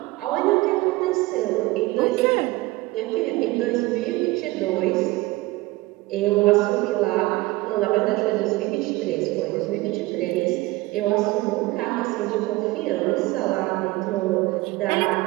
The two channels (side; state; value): left; quieter; 20.3 dB